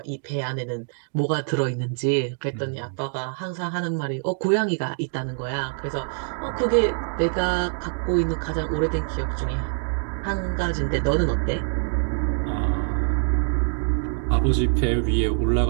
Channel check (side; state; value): left; silent; 62 dB below the other